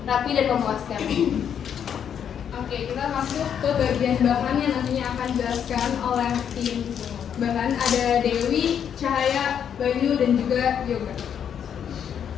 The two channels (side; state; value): right; quieter; 8.5 dB